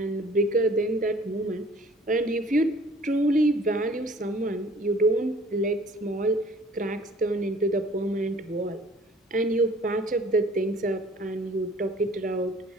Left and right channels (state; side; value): normal; both; correlation 0.53